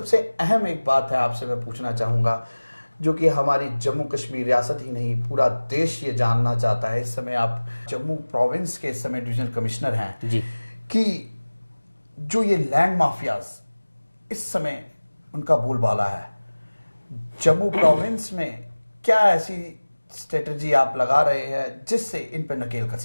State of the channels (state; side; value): inverted; both; correlation -1.00